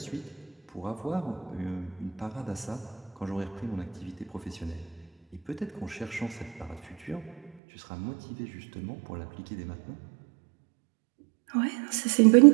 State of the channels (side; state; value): left; drops out; at 7.5 s